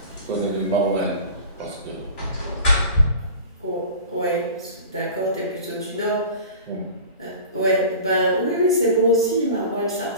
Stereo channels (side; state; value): both; inverted; correlation -0.38